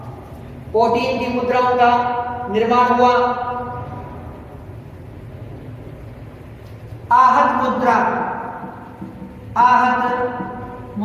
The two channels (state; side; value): identical; both; correlation 1.00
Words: प्रोटीन की मुद्राओं का निर्माण हुआ। आहत